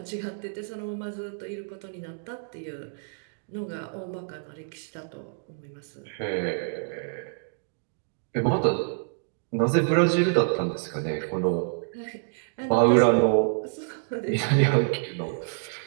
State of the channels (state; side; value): silent; left; digital silence